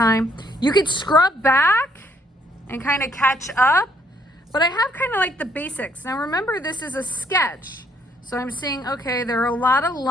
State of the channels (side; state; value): both; normal; correlation 0.68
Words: You could scrub back and kind of catch up, but I have kind of like the basics. Now remember, this is a sketch. So I'm seeing, okay, there are a lot of